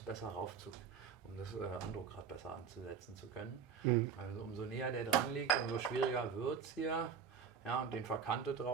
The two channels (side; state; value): left; quieter; 6.9 dB